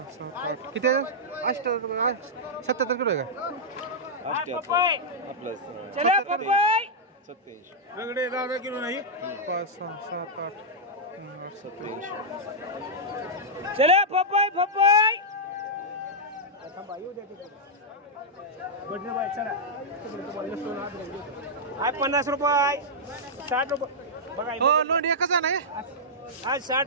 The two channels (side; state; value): both; normal; correlation -0.08